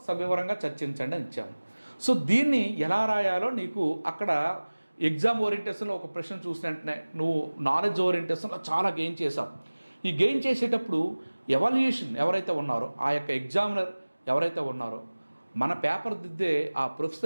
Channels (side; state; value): both; inverted; correlation -1.00